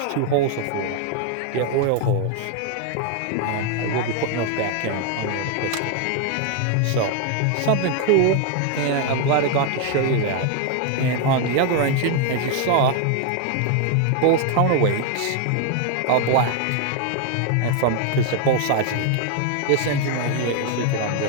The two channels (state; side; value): different; both; correlation 0.01